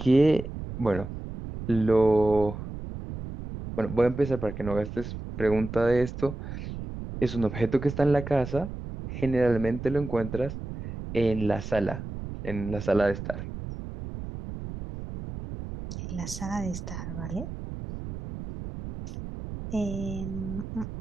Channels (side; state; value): right; noise; rumble, 9 dB below the sound